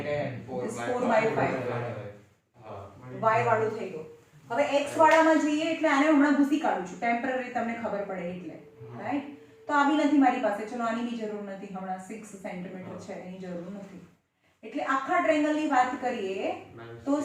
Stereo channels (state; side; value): identical; both; correlation 1.00